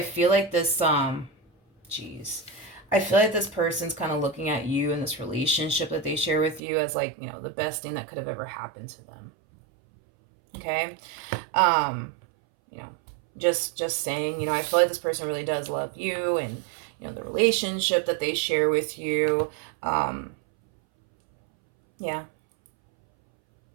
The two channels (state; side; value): drops out; left; at 6.6 s